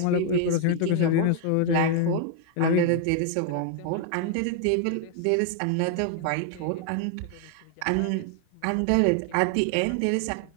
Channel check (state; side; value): different; both; correlation 0.00